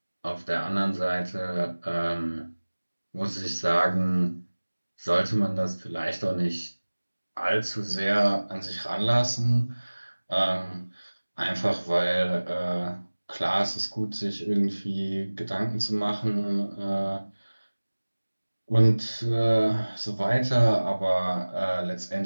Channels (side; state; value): both; inverted; correlation -1.00